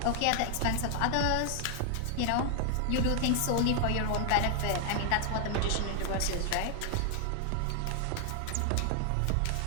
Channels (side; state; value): both; different; correlation 0.00